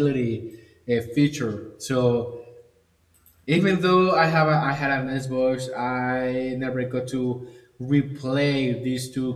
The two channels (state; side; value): identical; both; correlation 1.00